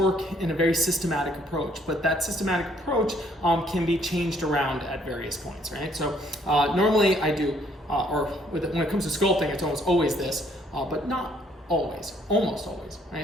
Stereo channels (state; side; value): normal; both; correlation 0.65